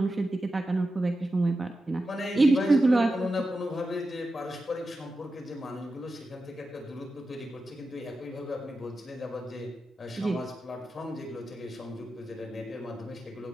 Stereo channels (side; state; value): both; normal; correlation 0.91